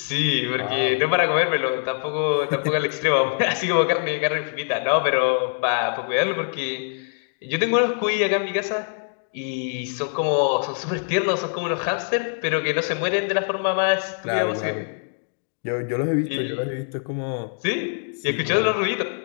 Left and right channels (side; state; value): right; silent; digital silence